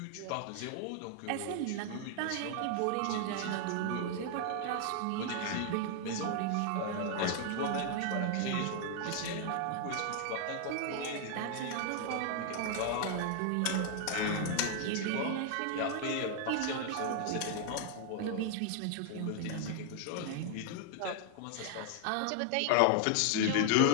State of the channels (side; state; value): both; different; correlation 0.00